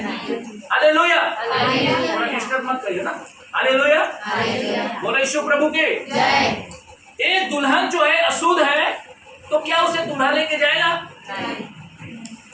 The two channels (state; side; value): identical; both; correlation 1.00